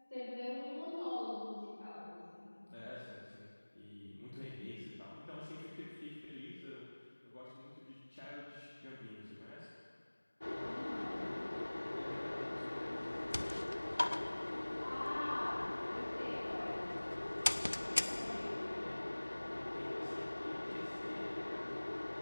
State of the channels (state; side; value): inverted; both; correlation -1.00